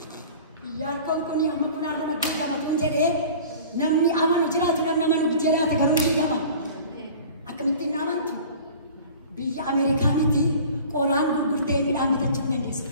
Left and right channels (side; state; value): both; inverted; correlation -0.43